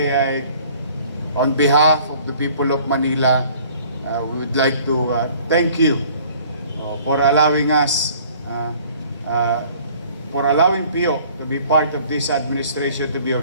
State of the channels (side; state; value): both; inverted; correlation -0.54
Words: on behalf of the people of Manila, we would like to thank you for allowing us, for allowing Pio to be part of this administration, to be